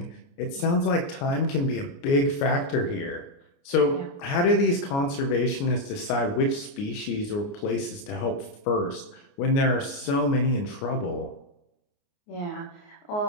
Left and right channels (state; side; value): late; right; 29 ms